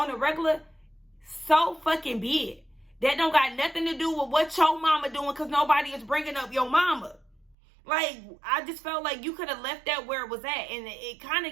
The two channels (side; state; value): left; drops out; at 7.6 s